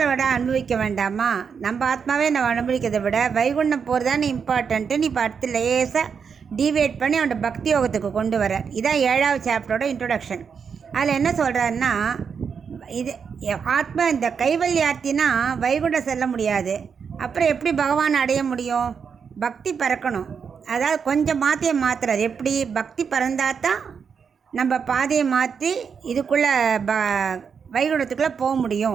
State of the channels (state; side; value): quieter; left; 6.4 dB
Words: விட அனுபவிக்க வேண்டாமா, நம்ம ஆத்மாவே நம்ம அனுபவிக்கிறதை விட வைகுண்டம் போகிறது தானே இம்பார்ட்டன்ட்டு. நீ இப்போ அடுத்து லேசாக டிவேட் பண்ணி அவனோட பக்தி யோகத்துக்கு கொண்டு வர. இதான் 7வது சாப்டரோட இன்ட்ரொடக்ஷன். அதில் என்ன சொல்கிறாருன்னா, இது ஆத்மா இந்த கைவல்யார்த்தினா வைகுண்டம் செல்ல முடியாது, அப்புறம் எப்படி பகவான் அடைய முடியும்? பக்தி பறக்கணும். அதாவது கொஞ்சம் மாற்றுறார். எப்படி பக்தி பறந்தாதான் நம்ம பாதையை மாற்றி இதுக்குள்ளே வைகுண்டத்துக்குள்ளே போக